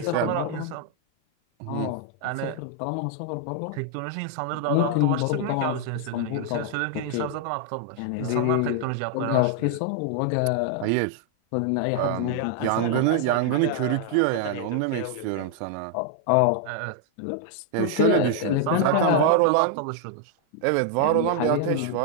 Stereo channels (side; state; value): both; different; correlation 0.00